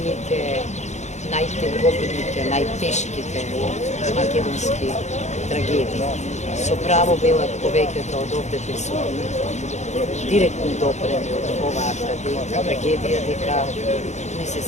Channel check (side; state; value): right; late; 0.33 ms